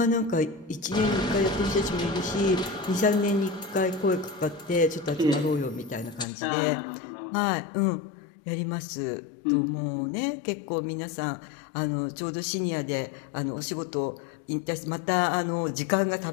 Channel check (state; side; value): drops out; right; at 6.2 s